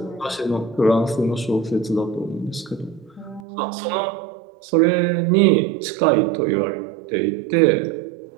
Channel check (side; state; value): left; drops out; at 3.4 s